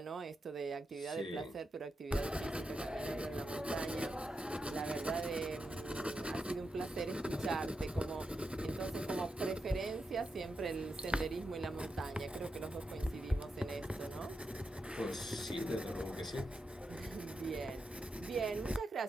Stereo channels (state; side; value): normal; both; correlation 0.87